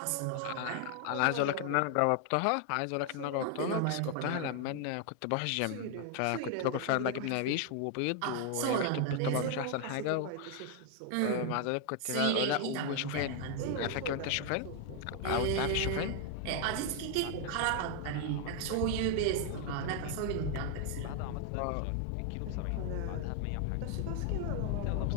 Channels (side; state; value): both; different; correlation 0.00